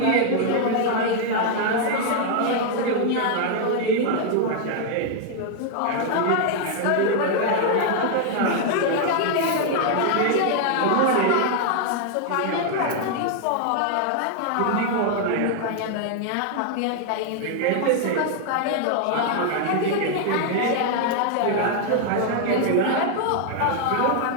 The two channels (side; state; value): both; different; correlation 0.00